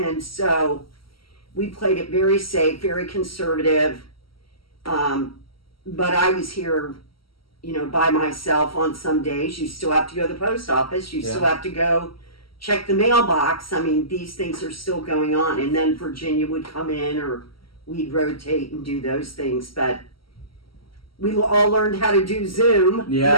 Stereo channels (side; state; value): right; late; 0.74 ms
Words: so we played it very safe, very conservative. But I was here, by myself on some days. You still have to go to the post office. You still have to go check the mailbox. I mean, these things are still going on. And then Virginia would come in, or we'd rotate and do those things. But we all learned how to do Zoom.